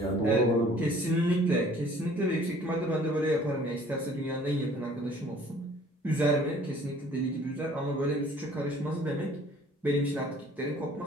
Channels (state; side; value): normal; both; correlation 0.54